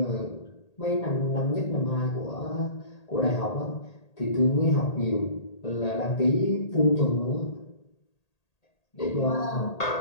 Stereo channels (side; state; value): right; late; 1.8 ms